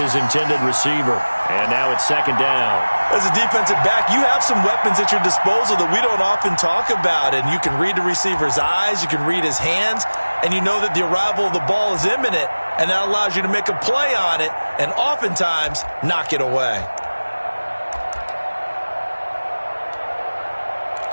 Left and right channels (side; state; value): both; inverted; correlation -1.00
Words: intended receiver. And now it's 2nd down. As a defensive back, you have some weapons at your disposal that we don't often talk about. And you can read the receiver's eyes, you can read his hands, and you know that the arrival of the ball is imminent. And that allows you to make a play on it and oftentimes knock it away.